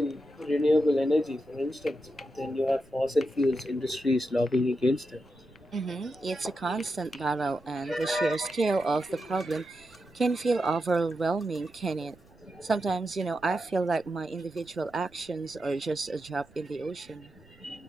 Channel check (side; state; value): right; noise; rumble, 27 dB below the sound